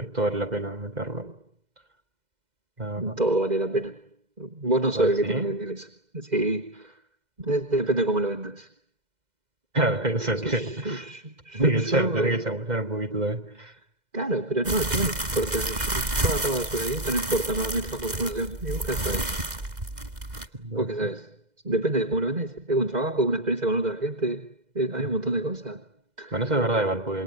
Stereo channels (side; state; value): left; late; 2.0 ms